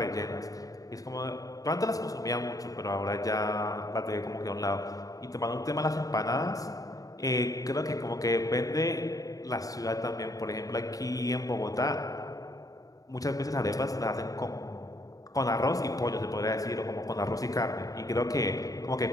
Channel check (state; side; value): late; right; 0.17 ms